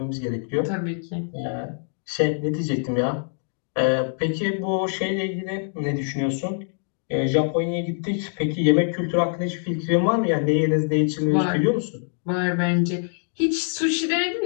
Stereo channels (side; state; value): right; silent; digital silence